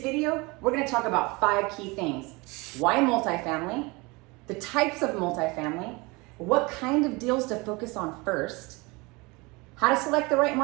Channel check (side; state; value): left; quieter; 25.5 dB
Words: video, we're gonna talk about 5 key things. Why multifamily? The types of multifamily, what kind of deals to focus on first, how to select the right